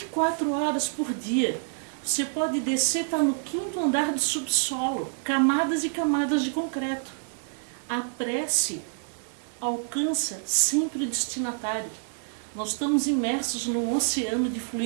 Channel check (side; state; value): left; silent; 60 dB below the other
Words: horas por dia. Você pode descer, está no 5º andar do subsolo, camadas e camadas de concreto. A prece alcança sempre o destinatário. Nós estamos imersos num oceano de